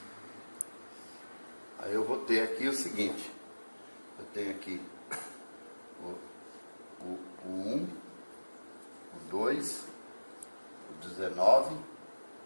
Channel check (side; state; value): both; inverted; correlation -1.00